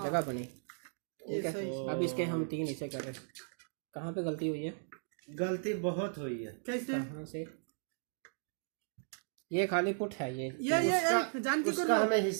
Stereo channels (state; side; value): silent; left; digital silence